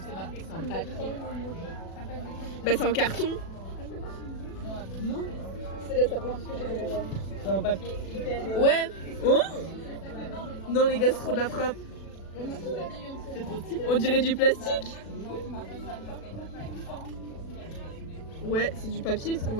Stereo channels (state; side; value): late; right; 36 ms